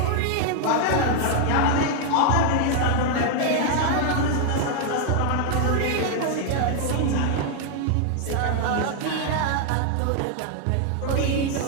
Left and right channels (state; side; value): different; both; correlation 0.00